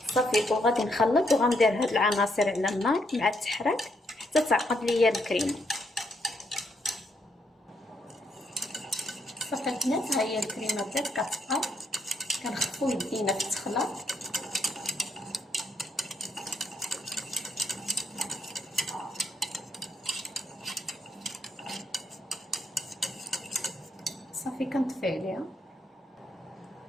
صافي، وغادي نخلط وغندير هاد العناصر على النار مع التحراك حتى تعقد ليا الكريمه. صافي البنات، ها هي الكريمه بدات كتقاد. كنخفوا يدينا في التخلط. صافي كنطفي عليها.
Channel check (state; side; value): normal; both; correlation 0.75